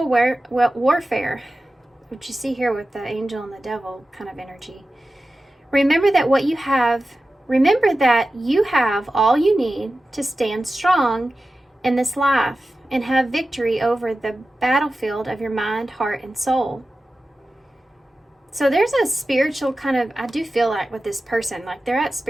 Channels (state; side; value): normal; both; correlation 0.94